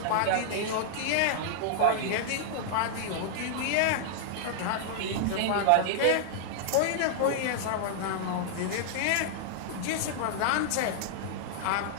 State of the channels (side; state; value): both; different; correlation -0.01